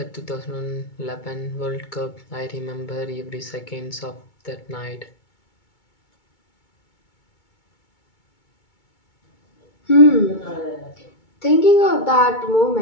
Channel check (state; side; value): late; right; 2.2 ms